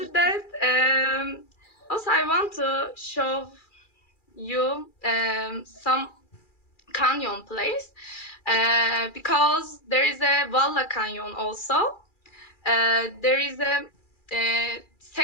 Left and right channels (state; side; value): late; right; 2.4 ms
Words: that, also I want to show you some canyon place, because there is a Valla Canyon also. There is a